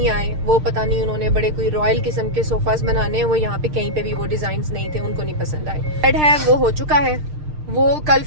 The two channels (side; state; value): left; late; 6.6 ms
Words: आए। वो पता नहीं उन्होंने बड़े कोई रॉयल किस्म के सोफास बनाने हैं, वो यहाँ पे कहीं पे भी वो डिजाइन्स नहीं थे, उनको नहीं पसंद आए। बेड है वो हो चुका है, वो कल